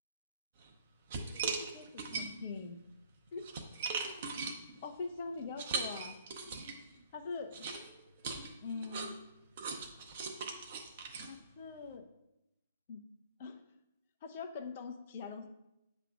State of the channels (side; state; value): both; inverted; correlation -0.53